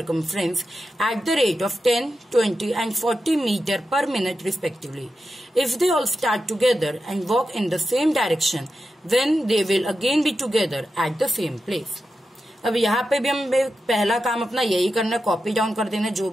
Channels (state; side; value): normal; both; correlation 0.90